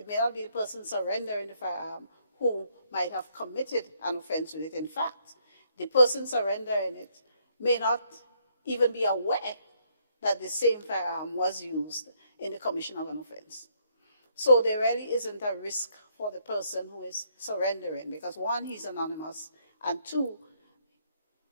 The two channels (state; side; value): inverted; both; correlation -0.70